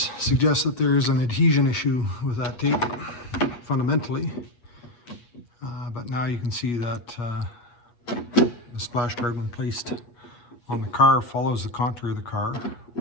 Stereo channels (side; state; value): right; late; 8.2 ms